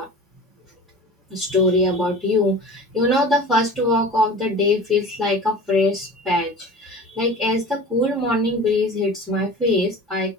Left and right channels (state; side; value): normal; both; correlation 0.38